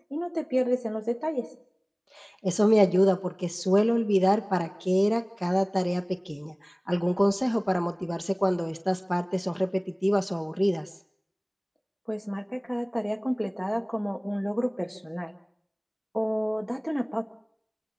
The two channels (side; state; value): both; identical; correlation 1.00